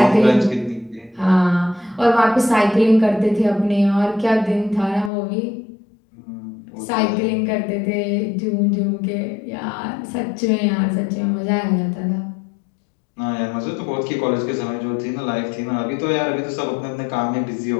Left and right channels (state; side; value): drops out; right; at 5.1 s